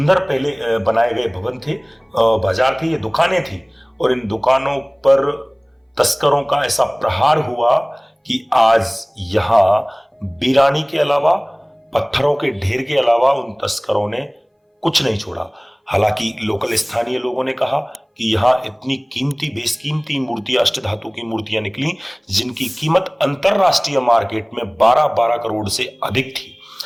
पहले बनाए गए भवन थे, बाजार थे, ये दुकानें थी। और इन दुकानों पर तस्करों का ऐसा प्रहार हुआ कि आज यहां वीरानी के अलावा, पत्थरों के ढेर के अलावा उन तस्करों ने कुछ नहीं छोड़ा। हालांकि लोकल स्थानीय लोगों ने कहा कि यहां इतनी कीमती, बेशकीमती मूर्तियां, अष्टधातु की मूर्तियां निकली जिनकी कीमत अंतरराष्ट्रीय मार्केट में 12-12 करोड़ से अधिक थी।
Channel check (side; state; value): both; identical; correlation 1.00